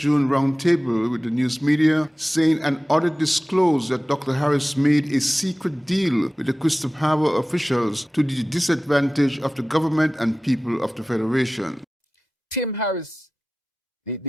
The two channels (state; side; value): normal; both; correlation 0.96